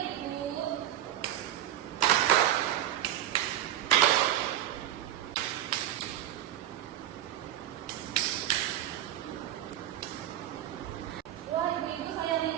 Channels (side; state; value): left; quieter; 12.3 dB